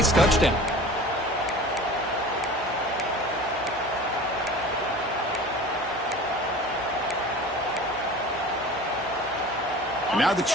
touchdown. And now the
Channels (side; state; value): right; noise; hum, 22 dB below the sound